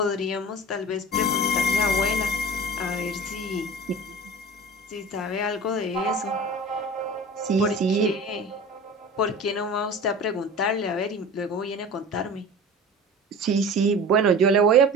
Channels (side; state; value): both; normal; correlation 0.37